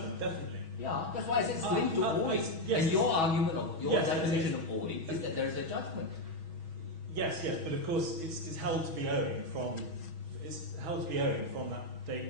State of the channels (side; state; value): left; late; 6.2 ms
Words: definitely. Yeah, that's why I said it's linked to owing. Yes. And your argument of your Yes, definition yes. of owing is that there is a judgment. Yes, but of course it's held to be owing from that